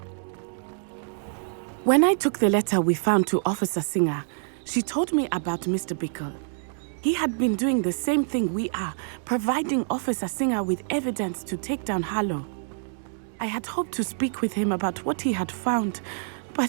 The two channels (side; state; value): left; silent; digital silence